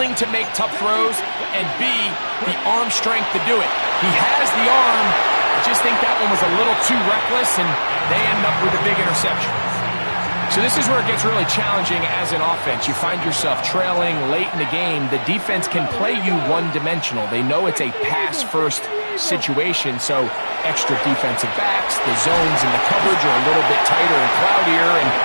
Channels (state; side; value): inverted; both; correlation -1.00